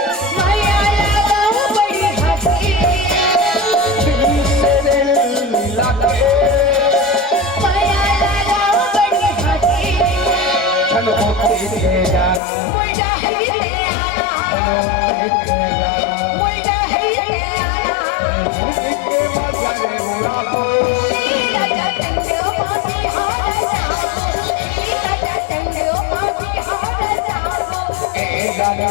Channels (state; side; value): drops out; right; at 12.4 s